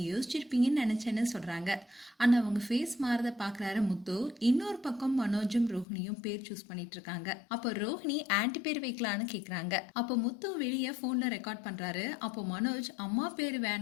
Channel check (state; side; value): drops out; right; at 5.9 s